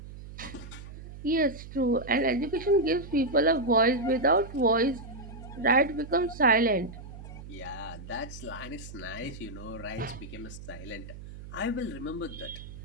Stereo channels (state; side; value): noise; right; hum, 13 dB below the sound